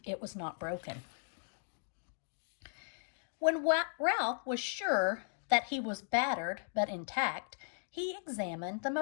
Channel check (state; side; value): silent; right; digital silence